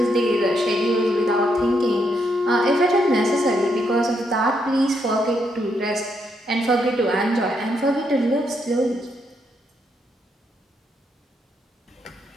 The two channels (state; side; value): normal; both; correlation 0.77